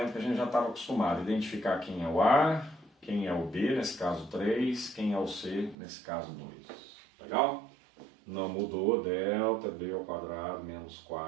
que a gente já estava acostumado, identificar quem é o A, quem é o B, nesse caso 3, quem é o C, nesse caso 2. Legal? Não mudou, delta B ao quadrado menos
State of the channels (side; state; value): left; drops out; at 5.8 s